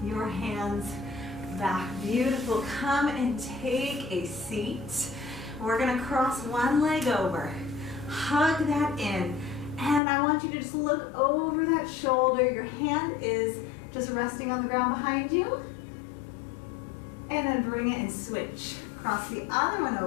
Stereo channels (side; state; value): right; drops out; at 10.0 s